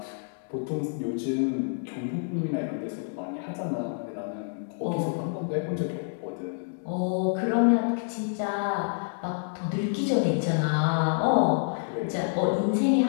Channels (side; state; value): right; silent; digital silence